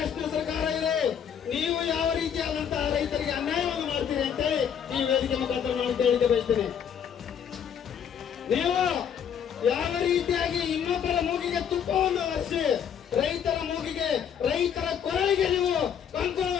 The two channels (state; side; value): quieter; right; 8.3 dB